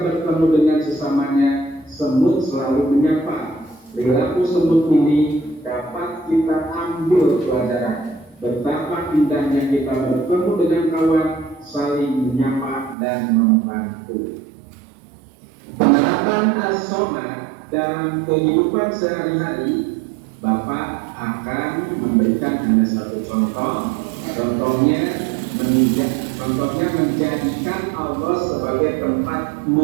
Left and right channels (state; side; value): drops out; left; at 13.0 s